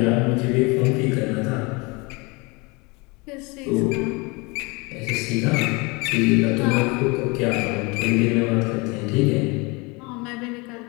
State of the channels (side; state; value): right; quieter; 27.3 dB